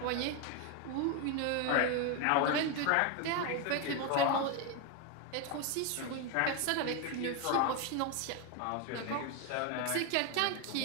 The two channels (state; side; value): different; both; correlation 0.01